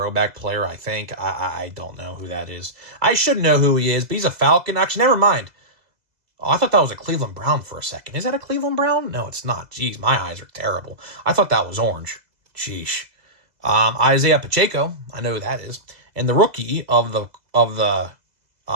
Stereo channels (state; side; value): late; left; 2.0 ms